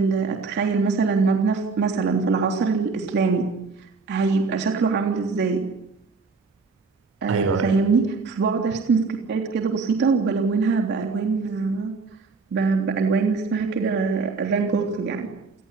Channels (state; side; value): quieter; left; 4.4 dB